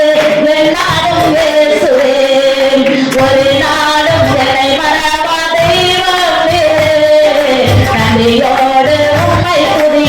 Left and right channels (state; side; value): identical; both; correlation 1.00